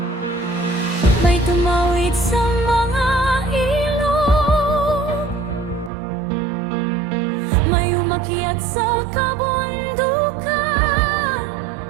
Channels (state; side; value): drops out; left; at 5.9 s